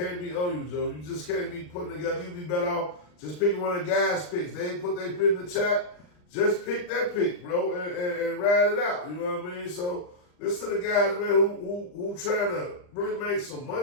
be on you, Joe. You just can't be putting together. You be better off just picking one of the guys' picks. They ain't put their pick in the chat. Just pick that pick, bro, and ride it out. You know what I mean? So listen to the guys, man, who trying to really make some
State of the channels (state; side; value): late; right; 39 ms